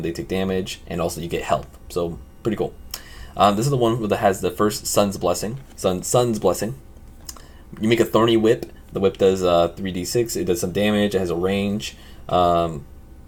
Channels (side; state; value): both; identical; correlation 1.00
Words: they take damage, and also you get health. So pretty cool. This is the one that has the first Sun's Blessing. Sun's Blessing. You make a thorny whip. The whip does 3d6. It does some damage. It has a range.